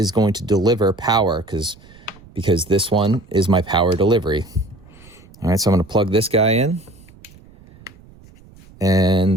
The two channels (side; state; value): right; noise; rumble, 24 dB below the sound